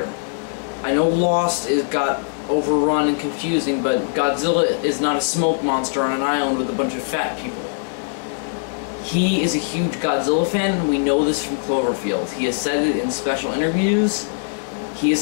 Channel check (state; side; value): silent; right; digital silence